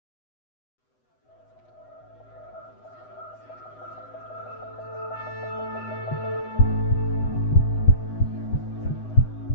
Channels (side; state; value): right; late; 8.0 ms